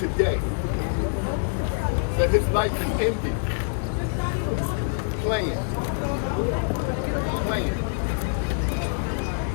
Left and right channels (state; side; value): silent; right; digital silence